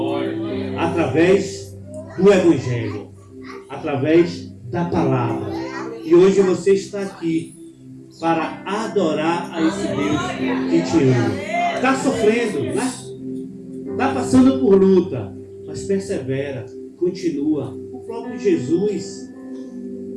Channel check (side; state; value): both; identical; correlation 1.00